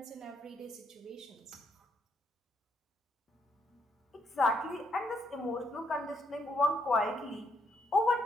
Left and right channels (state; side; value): normal; both; correlation 0.75